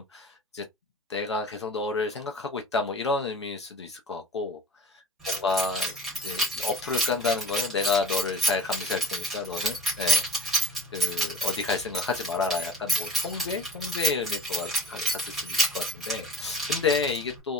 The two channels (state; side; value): normal; both; correlation 0.32